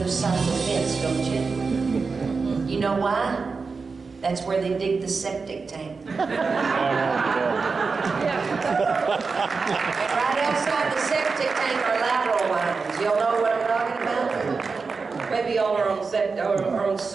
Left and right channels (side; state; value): left; quieter; 4.6 dB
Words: side of the fence, don't you? You know why? That's where they dig the septic tank. And right outside the septic tank are lateral lines. Y'all know what I'm talking about? Maybe y'all are on